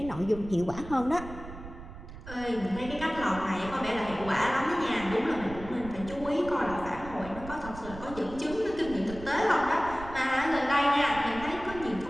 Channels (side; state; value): right; noise; rumble, 13 dB below the sound